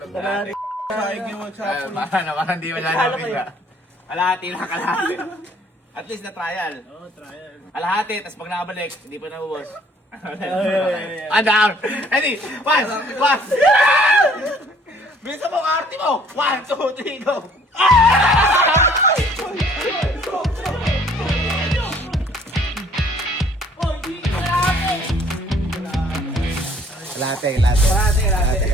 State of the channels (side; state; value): both; normal; correlation 0.58